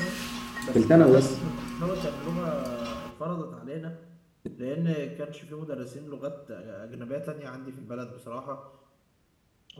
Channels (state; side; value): identical; both; correlation 1.00